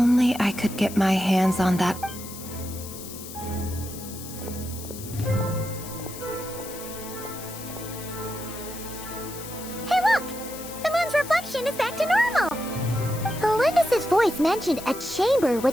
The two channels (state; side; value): noise; left; hiss, 12 dB below the sound